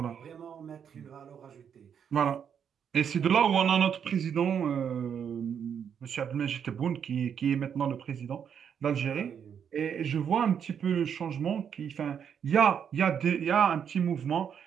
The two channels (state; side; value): quieter; left; 7.9 dB